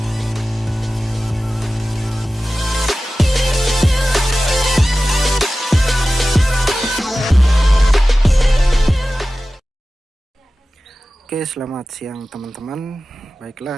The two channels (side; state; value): both; normal; correlation 0.95